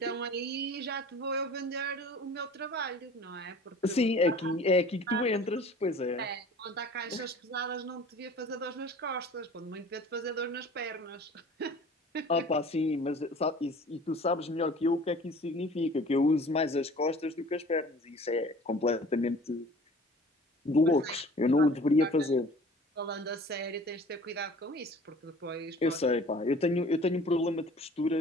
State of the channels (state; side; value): normal; both; correlation 0.46